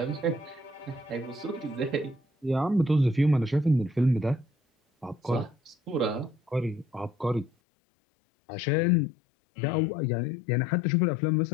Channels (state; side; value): drops out; right; at 7.5 s